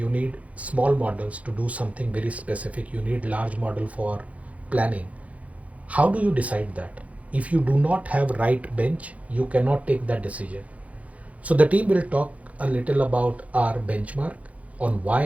need small models to do something very specific. You need large model for planning. How do you decide that? If you do not have right bench, you cannot take that decision. So the team will talk a little about our benchmark on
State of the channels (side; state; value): left; late; 0.067 ms